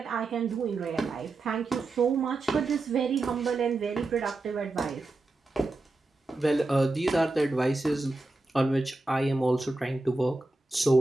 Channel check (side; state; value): left; quieter; 3.1 dB